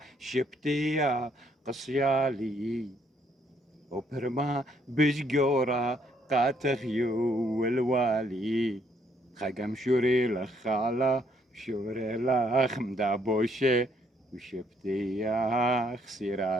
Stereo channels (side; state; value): both; normal; correlation 0.69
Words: شبتيا قصيالي وبرما بشجورة قاتغيو الوالي خقم شوري لخالة شوري لخ مدابوشي وشبتي يا